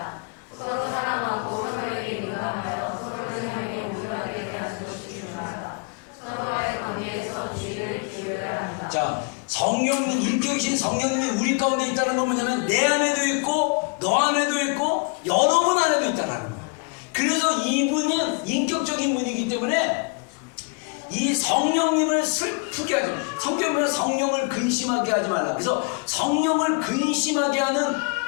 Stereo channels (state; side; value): quieter; right; 33.1 dB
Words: 서로 사랑하고 서로에게 민감하여 서로를 향해 우월하게 대하는 것이 중요하다. 서로와의 관계에서 주의를 기울여야 한다. 자, 성령님, 인격이신 성령님이 우리 가운데 있다는 건 뭐냐면 내 안에도 있고 너 안에도 있고 여러분 안에도 있다는 거예요. 그래서 이분은 인격적인 분이기 때문에 이 성령님을 슬프게 하지 말라. 성경은 성령을 근심하게 하지 말라. 그래서 성령을 근심하게 하는